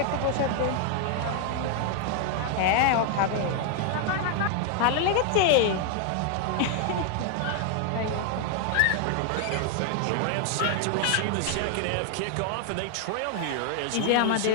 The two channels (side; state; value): both; different; correlation 0.00